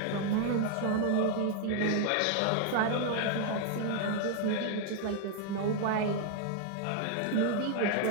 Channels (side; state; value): both; different; correlation 0.00